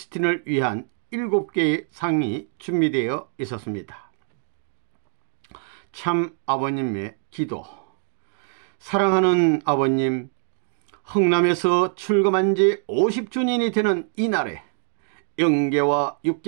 위한 7개의 상이 준비되어 있었습니다. 참 아버님의 기도. 사랑하는 아버님, 흥남에서 출금한 지 50주년이 되는 이날에 영계와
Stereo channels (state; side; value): silent; left; digital silence